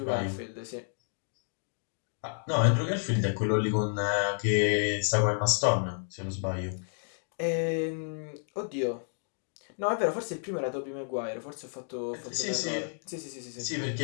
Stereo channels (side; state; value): right; silent; digital silence